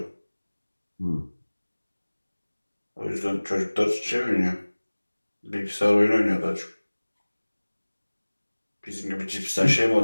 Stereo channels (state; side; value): inverted; both; correlation -1.00